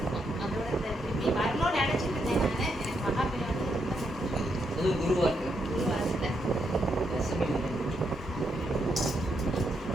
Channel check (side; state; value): both; normal; correlation 0.79